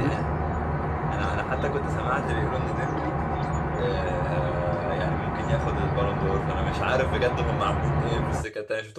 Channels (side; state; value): both; identical; correlation 1.00